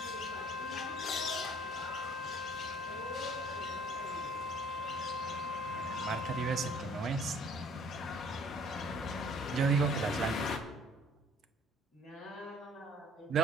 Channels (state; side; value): normal; both; correlation 0.55